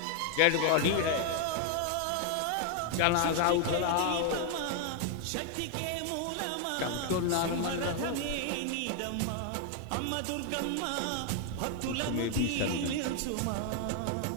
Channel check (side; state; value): both; different; correlation 0.01